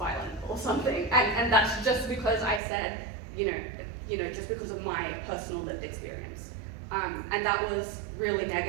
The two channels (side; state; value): left; drops out; at 2.6 s